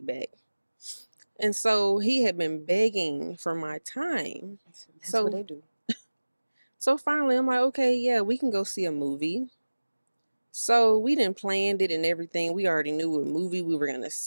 And so he had been begging for my time. That's what they do. So finally, I'm like, okay, yeah, we can go see a movie. So we didn't planned it and everything. We already knew what movie we were going to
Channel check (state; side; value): inverted; both; correlation -1.00